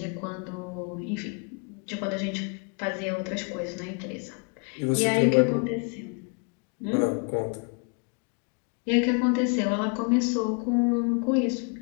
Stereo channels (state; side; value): quieter; right; 36.7 dB